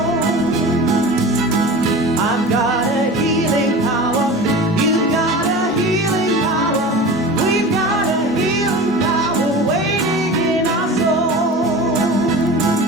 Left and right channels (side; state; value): both; normal; correlation 0.34